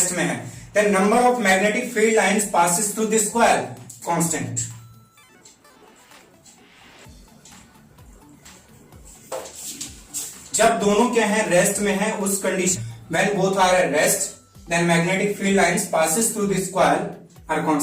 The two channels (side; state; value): both; identical; correlation 1.00